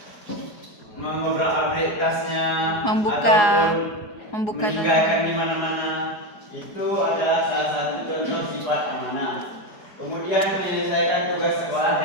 mengobrak-abrik tasnya, ataupun meninggalkan di mana-mana. Itu adalah salah satu contoh sifat amanah. Kemudian menyelesaikan tugas sekolah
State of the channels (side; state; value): right; late; 4.8 ms